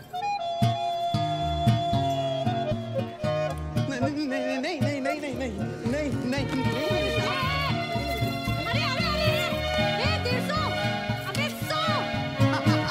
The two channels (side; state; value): both; identical; correlation 1.00